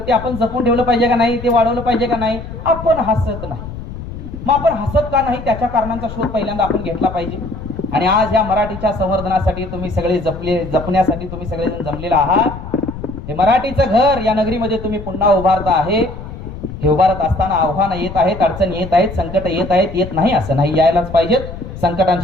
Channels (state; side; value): noise; left; rumble, 10 dB below the sound